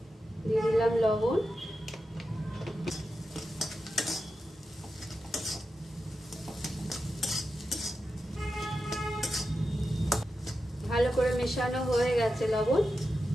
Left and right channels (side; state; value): both; normal; correlation 0.90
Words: দিয়ে দিলাম লবণ। ভালো করে মেশানো হয়ে গেছে লবণ,